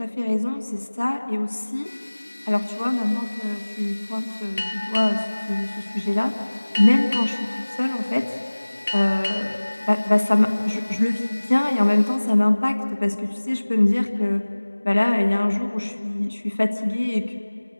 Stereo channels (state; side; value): inverted; both; correlation -1.00